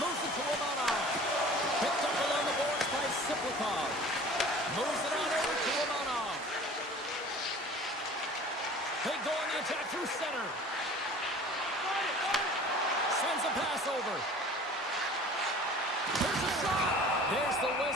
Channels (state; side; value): normal; both; correlation 0.45